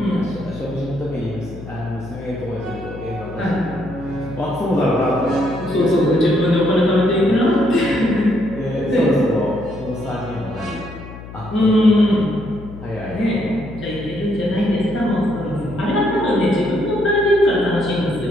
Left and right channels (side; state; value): left; noise; hum, 14 dB below the sound